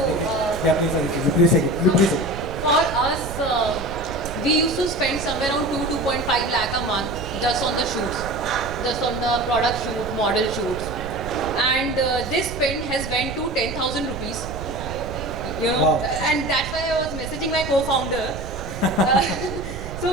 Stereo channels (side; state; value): right; noise; rumble, 9 dB below the sound